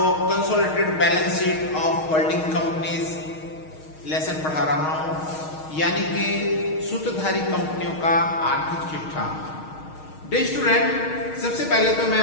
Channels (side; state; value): right; late; 6.4 ms